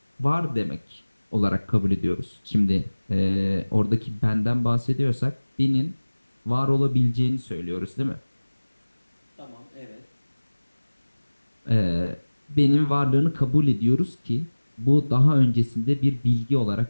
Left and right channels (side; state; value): both; inverted; correlation -1.00